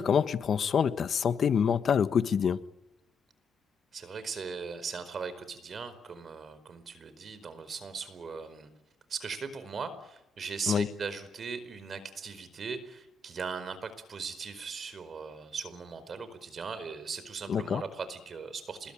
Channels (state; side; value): quieter; right; 4.0 dB